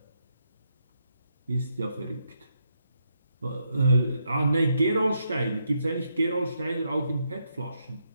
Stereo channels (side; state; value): both; inverted; correlation -0.79